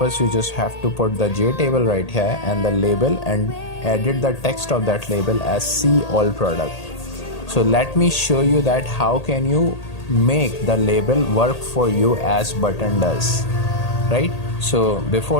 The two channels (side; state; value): right; late; 1.8 ms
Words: you just have to put the J table right here and the label, and edit the text of that label as see all product. So let me show you that how can you make the label work for you as button does, right? So